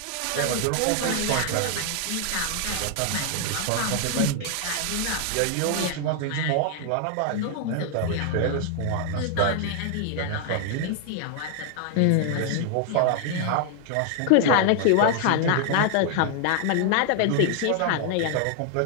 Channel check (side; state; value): both; different; correlation 0.00